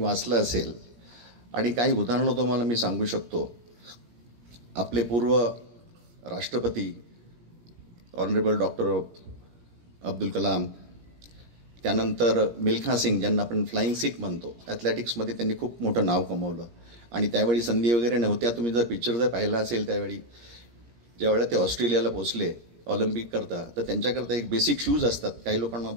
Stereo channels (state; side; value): late; left; 17 ms